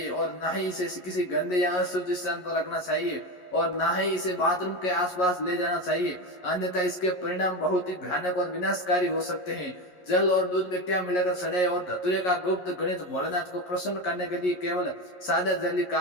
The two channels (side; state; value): right; late; 11 ms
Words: और ना ही इसे किसी गंदे या अशुद्ध स्थान पर रखना चाहिए और ना ही इसे बाथरूम के आसपास ले जाना चाहिए, अन्यथा इसके परिणाम बहुत ही भयानक और विनाशकारी हो सकते हैं। जल और दूध में क्या मिलाकर सड़े और धतूरे का गुप्त गणित भोलेनाथ को प्रसन्न करने के लिए केवल सादा जल ही